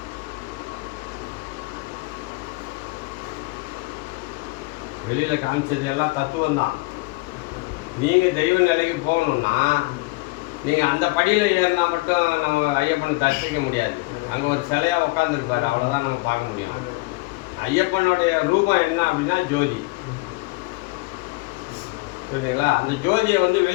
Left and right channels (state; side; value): quieter; right; 24.2 dB